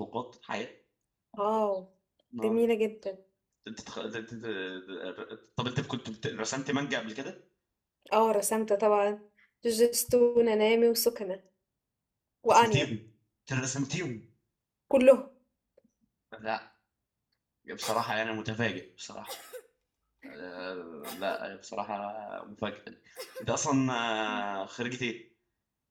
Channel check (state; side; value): identical; both; correlation 1.00